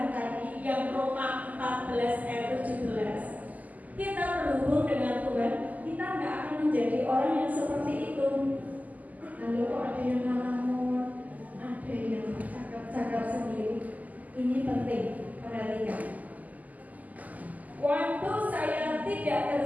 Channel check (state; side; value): late; left; 0.078 ms